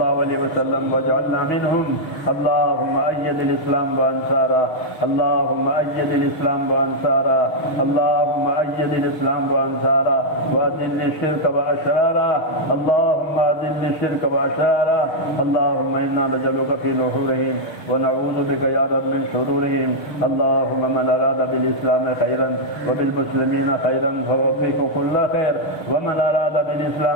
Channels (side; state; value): right; late; 6.4 ms